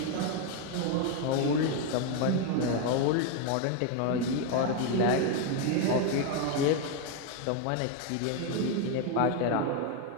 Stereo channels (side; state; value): both; different; correlation 0.01